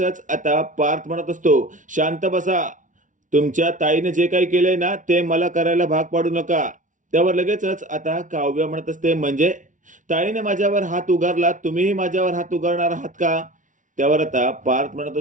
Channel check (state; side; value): late; left; 0.37 ms